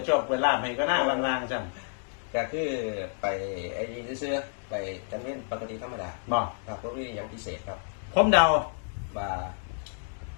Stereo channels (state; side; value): silent; right; digital silence